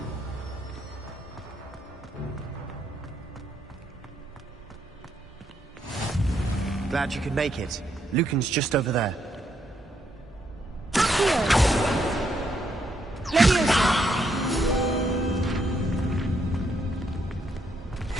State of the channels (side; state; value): both; normal; correlation 0.76